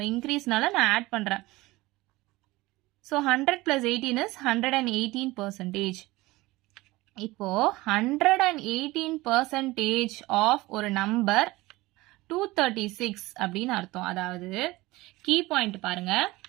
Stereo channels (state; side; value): quieter; left; 20.1 dB